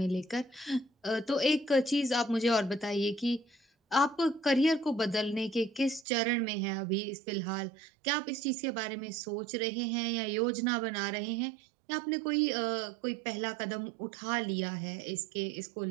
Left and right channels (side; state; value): left; drops out; at 6.1 s